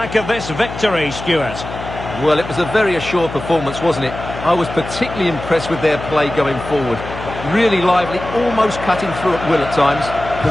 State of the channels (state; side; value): noise; left; hum, 10 dB below the sound